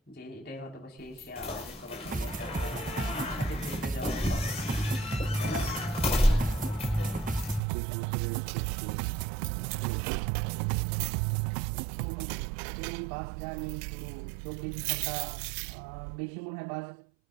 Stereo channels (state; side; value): drops out; left; at 7.6 s